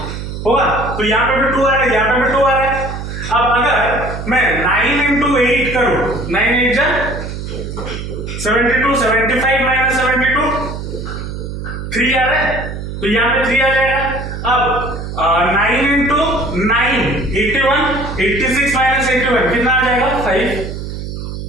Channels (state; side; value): noise; right; hum, 7 dB below the sound